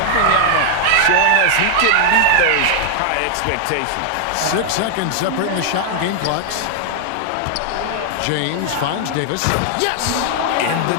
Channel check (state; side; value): different; both; correlation 0.00